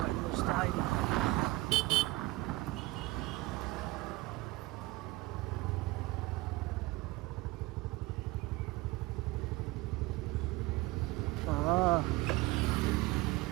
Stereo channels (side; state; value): left; quieter; 20.7 dB